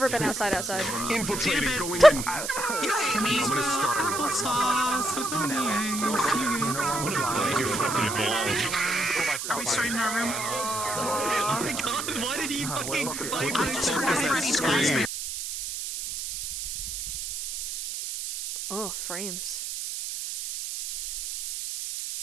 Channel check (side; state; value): right; noise; hiss, 5 dB below the sound